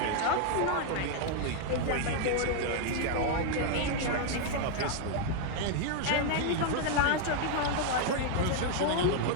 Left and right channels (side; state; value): both; different; correlation 0.00